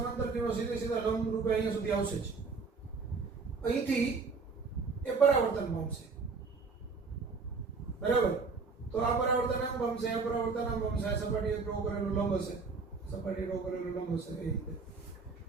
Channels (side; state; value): left; quieter; 4.5 dB